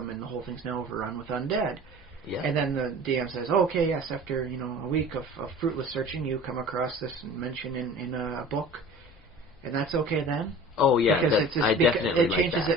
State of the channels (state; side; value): normal; both; correlation 0.42